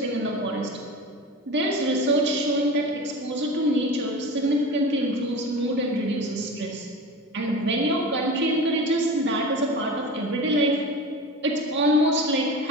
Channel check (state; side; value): normal; both; correlation 0.31